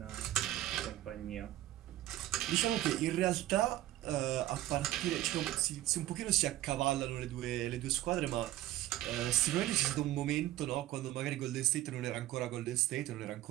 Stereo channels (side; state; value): left; quieter; 14.8 dB